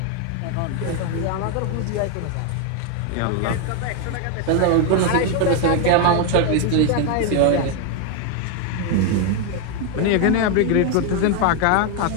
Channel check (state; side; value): different; both; correlation 0.01